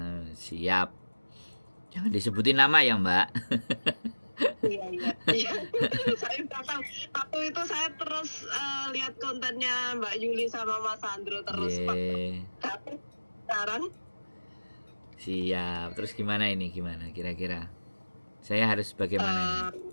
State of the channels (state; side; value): inverted; both; correlation -1.00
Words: siap. Jangan disebutin nama ya, Mbak. Iya. Saya udah tahu. Waktu itu saya terus lihat kontennya Mbak Yuli sama Mas Andro terus. Tapi sekarang siap. Terus gimana ini? Gimana kira-kira? Saya harus bagaimana ini?